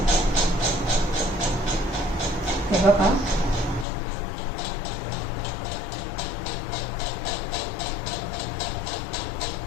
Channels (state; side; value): drops out; right; at 3.9 s